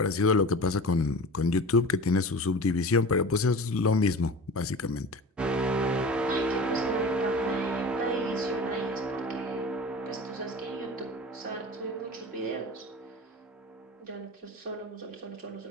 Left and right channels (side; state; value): both; normal; correlation 0.34